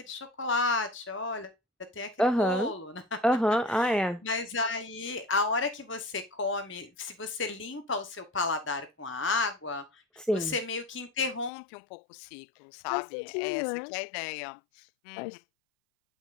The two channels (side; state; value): right; drops out; at 11.5 s